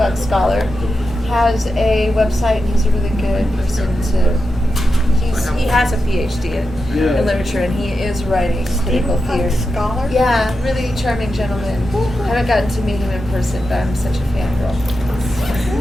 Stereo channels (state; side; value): normal; both; correlation 0.89